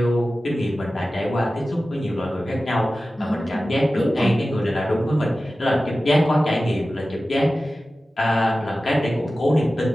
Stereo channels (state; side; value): normal; both; correlation 0.95